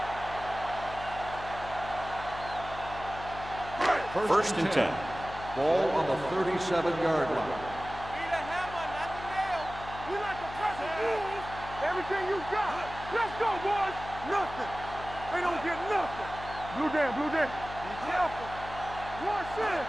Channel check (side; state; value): left; noise; hum, 12 dB below the sound